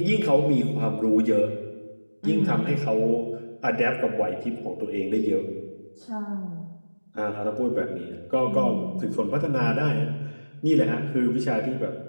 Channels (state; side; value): inverted; both; correlation -1.00